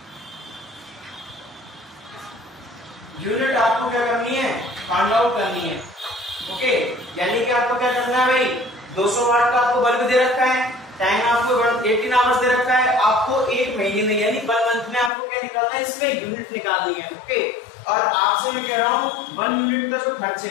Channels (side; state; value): right; drops out; at 15.1 s